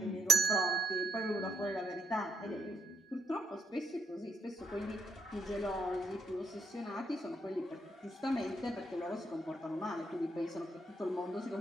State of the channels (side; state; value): both; normal; correlation 0.69